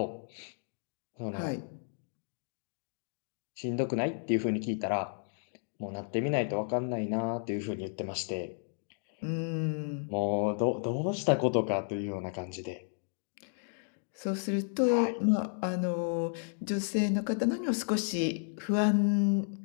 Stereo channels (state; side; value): silent; right; digital silence